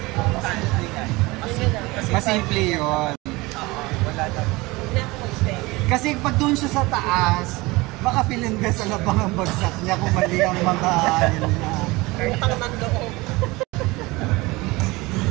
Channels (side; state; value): left; quieter; 22.3 dB